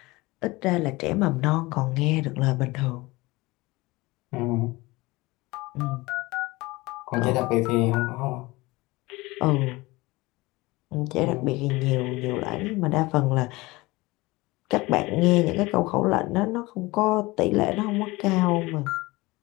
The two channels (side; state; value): right; quieter; 21.7 dB